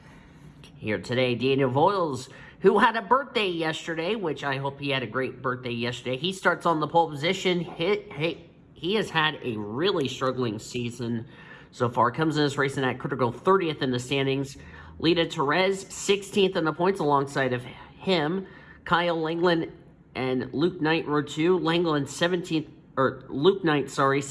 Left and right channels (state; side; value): identical; both; correlation 1.00